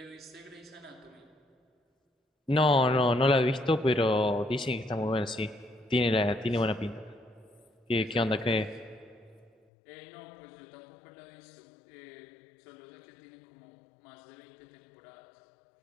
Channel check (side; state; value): right; drops out; at 9.5 s